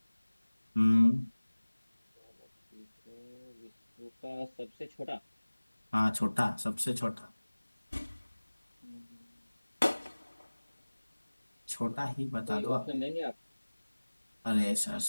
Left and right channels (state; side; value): inverted; both; correlation -1.00